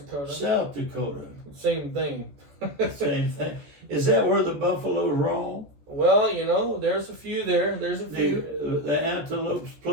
South Dakota. Same thing. Same thing. Is that where the buffaloes roam? Well, there's a few there. There's a few. The antelopes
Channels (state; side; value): late; left; 14 ms